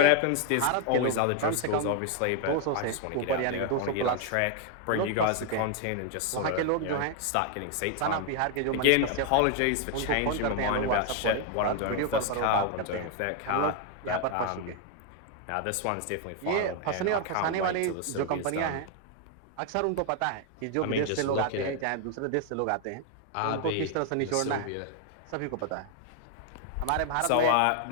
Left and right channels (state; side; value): different; both; correlation 0.01